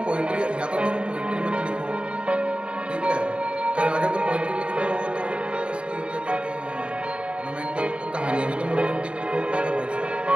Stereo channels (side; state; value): left; late; 0.056 ms